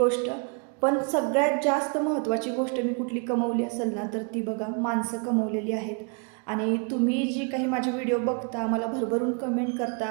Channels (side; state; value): left; quieter; 37.4 dB